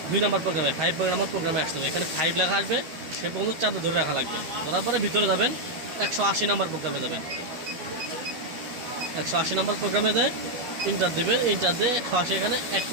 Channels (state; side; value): late; left; 12 ms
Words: 2 নম্বর প্রোগ্রামে 5 নম্বর প্রোগ্রামে আসতে হবে। এখানে 5 লেখা আসবে, সে পর্যন্ত চাপ দিয়ে ধরে রাখা লাগবে। তারপরে ভিতরে যাবেন 180 নম্বর প্রোগ্রামে যাবেন। 180 নম্বর প্রোগ্রামে যায় ইন্টার দেবেন, ইন্টার দিয়ে 180 এখানে এক